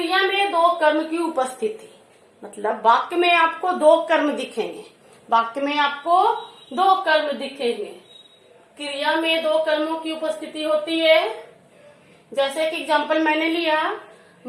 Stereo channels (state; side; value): identical; both; correlation 1.00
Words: में दो कर्म की उपस्थिति, मतलब वाक्य में आपको दो कर्म दिखेंगे। वाक्य में आपको दो कर्म दिखेंगे, क्रिया में दो कर्मों की उपस्थिति होती है। जैसे कि एग्जाम्पल मैंने लिया,